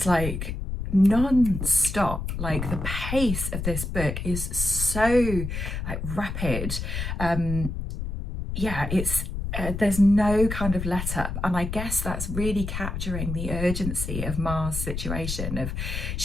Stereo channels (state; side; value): noise; left; rumble, 4 dB below the sound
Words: like non-stop. Like the pace of this book is so like rapid. Yeah, it's there's no kind of let up, and I guess that's really capturing the urgency of Ma's situation. Of